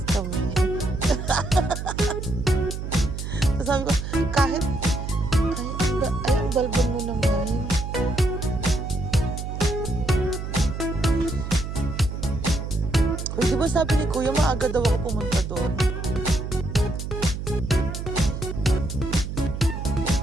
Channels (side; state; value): right; noise; hum, 6 dB below the sound